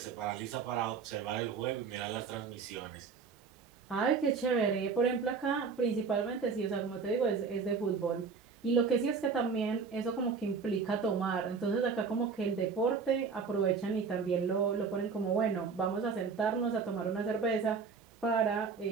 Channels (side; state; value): left; quieter; 5.4 dB